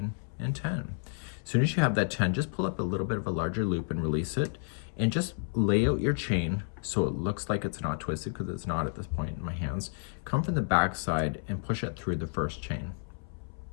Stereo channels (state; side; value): silent; right; 57 dB below the other